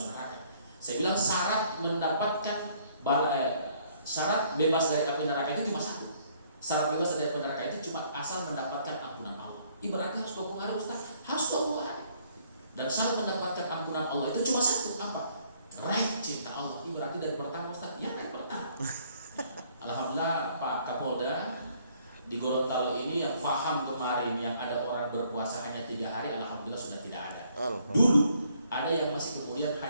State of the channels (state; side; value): inverted; both; correlation -0.64